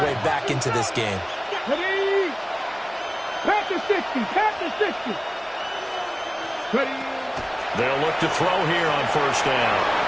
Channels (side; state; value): both; identical; correlation 1.00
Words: way back into this game. Ready? Pat the 60, pat the 60. Ready? They'll look to throw here on first down.